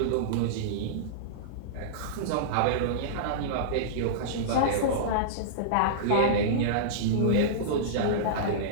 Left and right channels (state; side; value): different; both; correlation -0.03